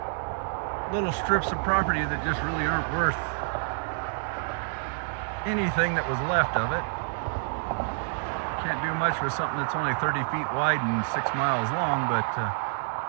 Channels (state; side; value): silent; left; digital silence